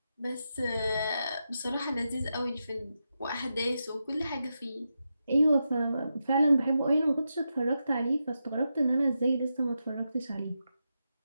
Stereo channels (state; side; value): inverted; both; correlation -0.87